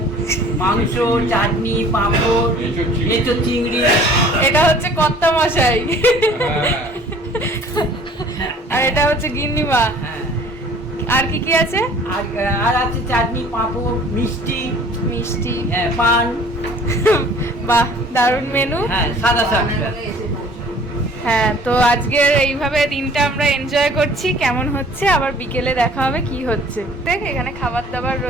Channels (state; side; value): normal; both; correlation 0.51